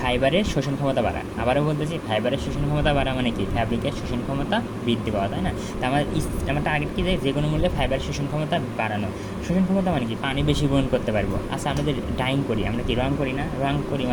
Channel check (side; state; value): both; identical; correlation 1.00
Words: শোষণ ক্ষমতা বাড়া। আবারও বলতেছি, ফাইবারের শোষণ ক্ষমতা বাড়া মানে কি, ফ্যাব্রিকের শোষণ ক্ষমতা বৃদ্ধি পাওয়া, তাই না? তো আমার টার্গেট কি, যে কোনো মূল্যে ফাইবারের শোষণ ক্ষমতা বাড়ানো। শোষণ ক্ষমতা মানে কি, পানি বেশি গ্রহণ করতে পারবো। আচ্ছা, আমরা যে ডাইং করি, আমরা কি রং করি না? রং করি